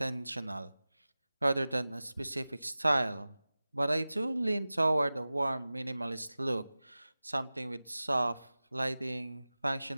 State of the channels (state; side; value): inverted; both; correlation -0.97